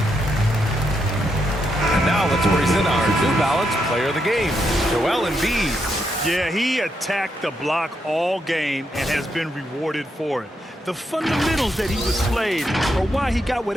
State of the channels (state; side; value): normal; both; correlation 0.81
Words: And now let's present our New Balance Player of the Game, Joel Embiid. Yeah, he attacked the block all game and has been rewarded for it. The fundamentals that he displayed are why he got